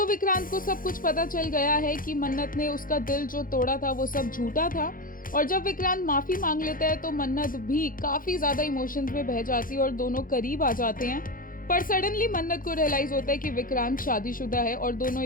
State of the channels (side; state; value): right; late; 0.40 ms